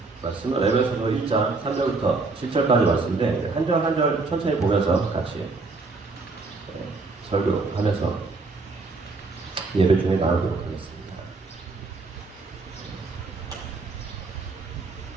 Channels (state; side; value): quieter; left; 3.8 dB